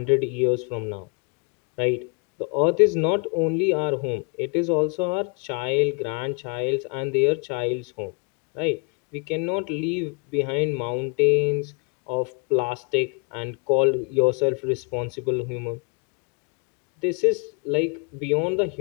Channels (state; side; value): quieter; right; 33.2 dB